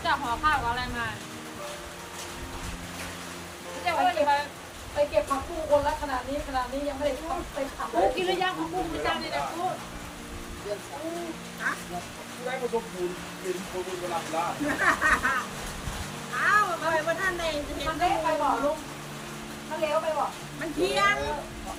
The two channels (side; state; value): both; identical; correlation 1.00